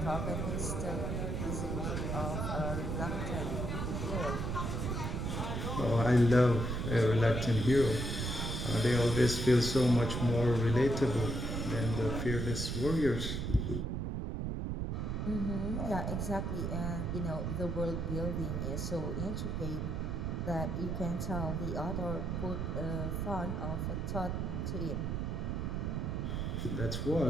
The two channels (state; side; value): noise; right; rumble, 1 dB below the sound